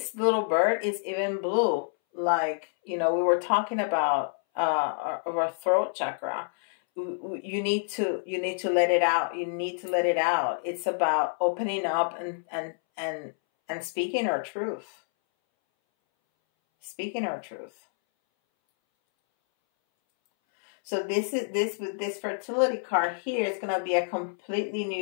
little bird is even blue. Like, you know, we were talking about our throat chakra. You need to let it out. You need to let it out. It's about opening up and speaking our truth. Speaking our truth. So this fertility card here is going to be a completely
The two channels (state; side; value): silent; right; 59 dB below the other